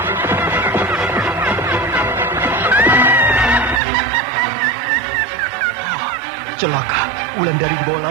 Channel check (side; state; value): left; drops out; at 3.8 s